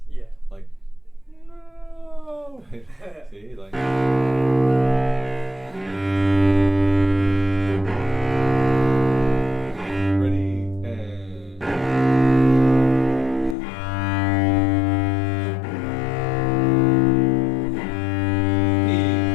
Yeah. Like, no. See, like. Ready, and.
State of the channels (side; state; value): right; drops out; at 13.6 s